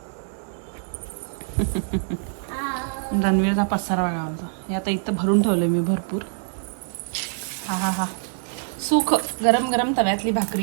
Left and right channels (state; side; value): silent; left; 59 dB below the other